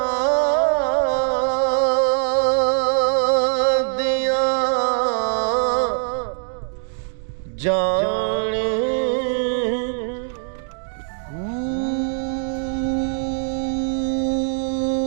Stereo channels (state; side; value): silent; left; digital silence